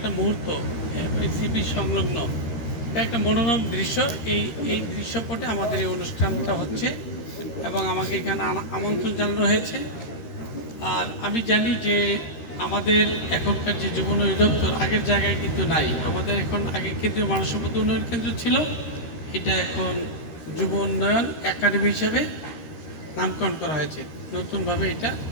মুহূর্ত সিবি সংলগ্ন এটা একটা মনোরম দৃশ্য। এই দৃশ্যপটে আমাদের এই অনুষ্ঠানটা হচ্ছে এবং আমাকে এখানে আমন্ত্রণ জানানো হয়েছে। আর আমি জানি যে আমাদের এখনকার যে যুব উন্নয়ন দপ্তর আগের জায়গায় কিন্তু নাই। আমাদের এখন আগে কেন্দ্রীয় মানব সম্পদ উন্নয়ন কেন্দ্র ছিল, এটা এখন যুব উন্নয়ন একাডেমি হিসেবে নামকরণ করা হয়েছে। নতুনভাবে এটা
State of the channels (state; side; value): late; right; 13 ms